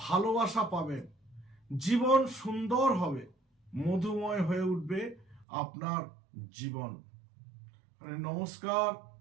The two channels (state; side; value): drops out; left; at 5.5 s